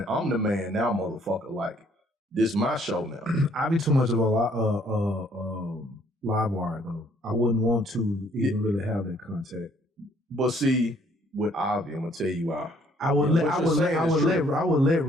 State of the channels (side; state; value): both; normal; correlation 0.63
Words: man now, motherfucker. Like this my show now. Javi too much of a live wire though. I wouldn't want to even really have that contact. But see, with Javi, I'm gonna tell you why. I would let